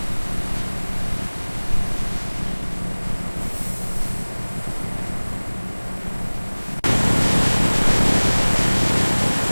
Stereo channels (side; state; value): both; inverted; correlation -1.00